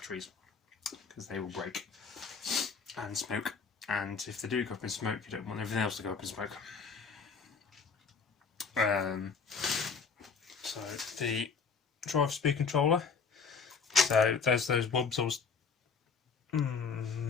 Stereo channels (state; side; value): quieter; right; 5.2 dB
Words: because they will break and smoke. And if they do go up in smoke, you don't want everything else to go up in smoke. So the drive speed controller. So there's those wubs.